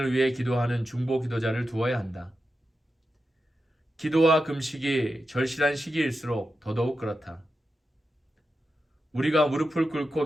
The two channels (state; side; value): normal; both; correlation 0.90